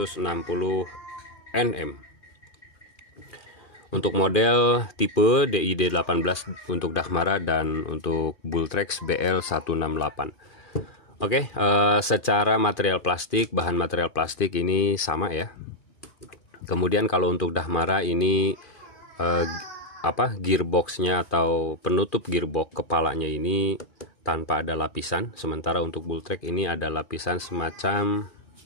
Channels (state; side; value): late; right; 2.5 ms